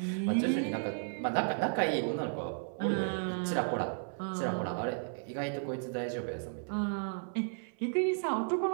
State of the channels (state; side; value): silent; left; 55 dB below the other